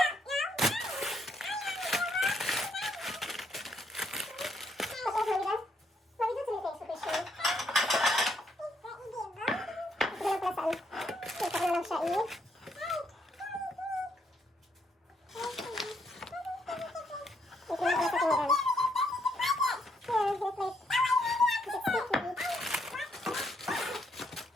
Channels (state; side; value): normal; both; correlation 0.73